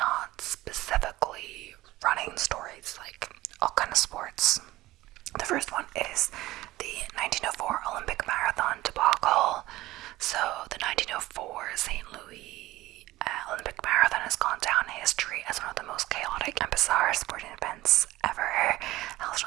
specifically running stories, like all kind of sports. The first one is the 1904 Olympic Marathon debacle. So the 1904 St. Louis Olympic Marathon has gone down in history as one of the most chaotic and bizarre sporting events ever. Held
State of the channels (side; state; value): left; quieter; 17.4 dB